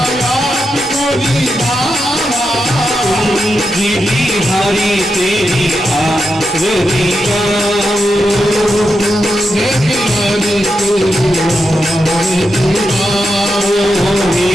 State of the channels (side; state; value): both; normal; correlation 0.87